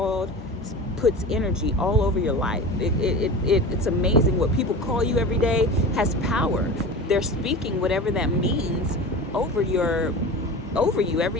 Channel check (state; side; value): normal; both; correlation 0.32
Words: puts energy all over your life. It's amazing what people call you every day has power. They're speaking whatever that means over you